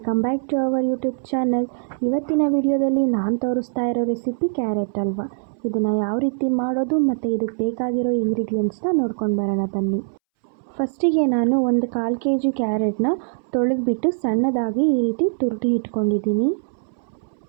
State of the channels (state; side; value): silent; left; 64 dB below the other